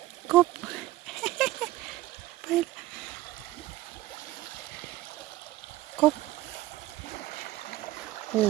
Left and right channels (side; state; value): left; quieter; 16.5 dB